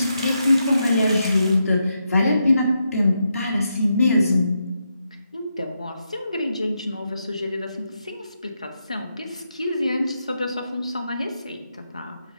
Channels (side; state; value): both; inverted; correlation -0.83